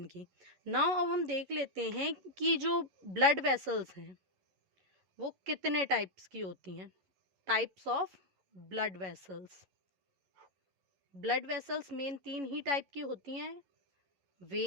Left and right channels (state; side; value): late; left; 11 ms